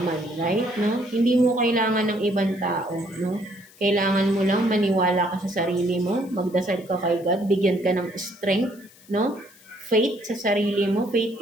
right? No? Hindi mo kailangan ng ibang tao, no? Kailangan mo lang maniwala ka sa sarili mo, magdasal ka kay God, bigyan ka ng strength, no? Faith sa sarili mo, faith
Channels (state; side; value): noise; left; hiss, 25 dB below the sound